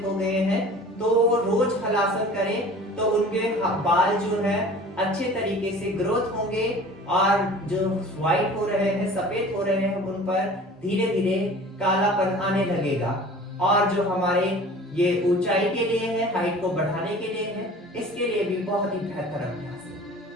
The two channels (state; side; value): normal; both; correlation 0.43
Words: हो गए हैं तो रोज हलासन करें तो उनके बाल जो है अच्छे तरीके से ग्रोथ होंगे और जो व्हाइट हो रहे हैं, सफेद हो रहे हैं, उन पर धीरे धीरे कालापन आने लगेगा। और जो हमारे ये ऊंचाई के लिए है, हाइट को बढ़ाने के लिए है, इसके लिए भी बहुत ही बेहतर अभ्यास है।